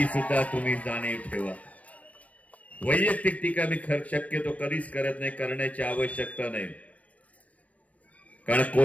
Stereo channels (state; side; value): late; right; 0.067 ms